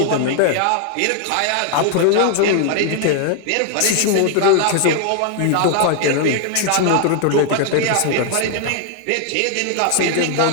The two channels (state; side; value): different; both; correlation 0.00